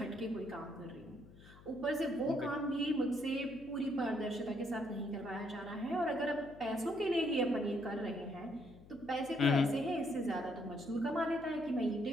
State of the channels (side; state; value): left; noise; hum, 21 dB below the sound